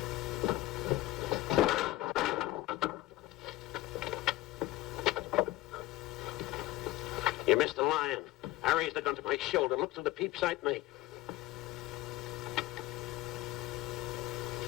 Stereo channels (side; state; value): right; quieter; 17.3 dB